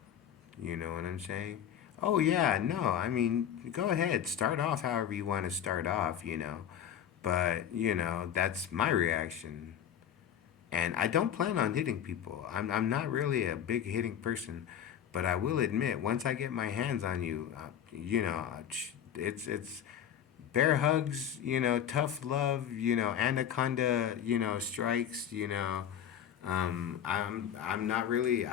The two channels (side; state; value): right; quieter; 9.5 dB